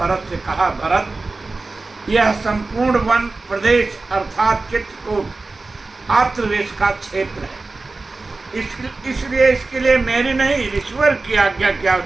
से कहा, भरत, यह संपूर्ण वन प्रदेश अर्थात चित्रकूट आत्रदेश का क्षेत्र है। इसलिए इसके लिए मेरी नहीं ईश्वर की आज्ञा की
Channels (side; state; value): left; quieter; 3.6 dB